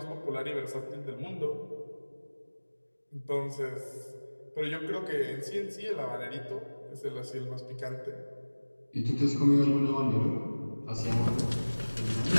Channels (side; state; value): both; inverted; correlation -1.00